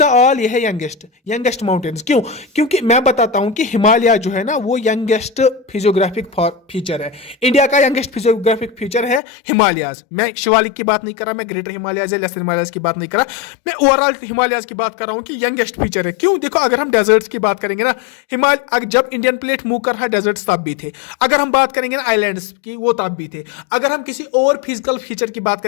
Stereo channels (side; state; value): right; drops out; at 9.2 s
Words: ऑल, ये है यंगेस्ट माउंटेन्स। क्यों? क्योंकि मैं बताता हूं कि हिमालय जो है ना, वो यंगेस्ट फिजियोग्राफिक फीचर है। इंडिया का यंगेस्ट फिजियोग्राफिक फीचर है हिमालयाज। मैं शिवालिक की बात नहीं कर रहा, मैं ग्रेटर हिमालयाज या लेसर हिमालयाज की बात नहीं कर रहा, मैं ओवरऑल हिमालयाज की बात कर रहा हूं कि यंगेस्ट फीचर है। क्यों? देखो, अगर हम डेजर्ट्स की बात करेंगे ना, हिमालय जब इंडियन प्लेट मूव कर रहा है, डेजर्ट्स तब भी थे। अगर हम बात करेंगे ना आइलैंड्स की, वो तब भी थे। अगर हम किसी और फिजिकल फीचर की बात